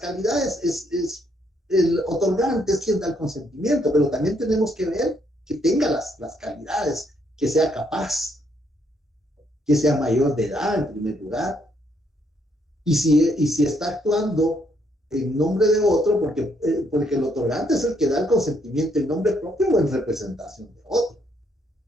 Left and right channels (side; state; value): both; normal; correlation 0.72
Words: es el otorgante es quien da el consentimiento, pero también tenemos que ver que tenga las calidades, que sea capaz, que sea mayor de edad en primer lugar, y si está actuando en nombre de otro, porque el otorgante es el que da el consentimiento en nombre propio o en representación de otro.